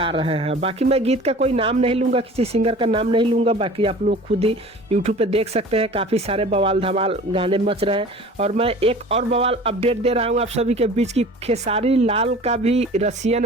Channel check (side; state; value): both; normal; correlation 0.43